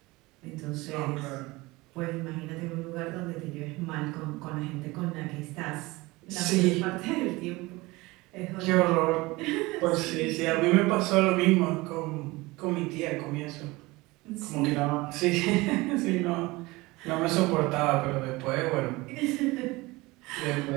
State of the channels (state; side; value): quieter; left; 21.9 dB